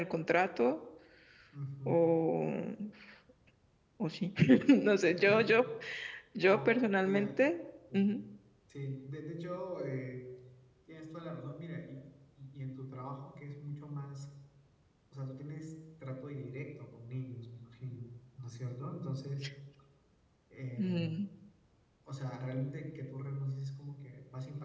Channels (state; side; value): identical; both; correlation 1.00